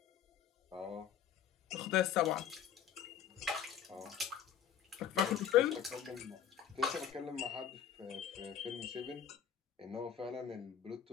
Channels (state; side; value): quieter; right; 8.9 dB